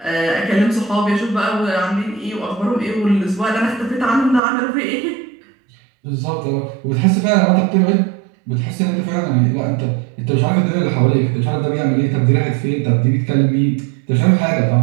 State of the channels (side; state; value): left; drops out; at 4.4 s